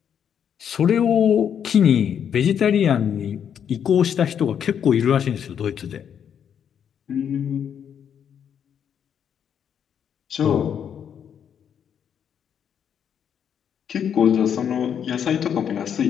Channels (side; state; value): right; quieter; 8.4 dB